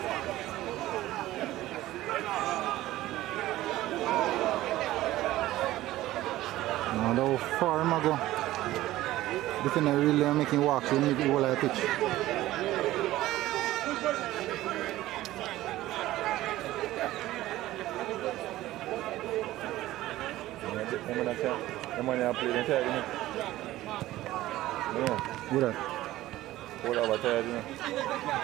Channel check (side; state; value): left; quieter; 15.8 dB